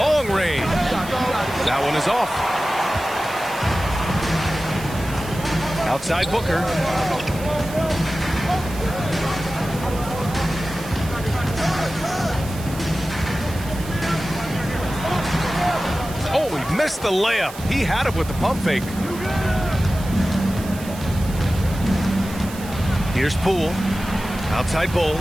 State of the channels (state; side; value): noise; right; hiss, 15 dB below the sound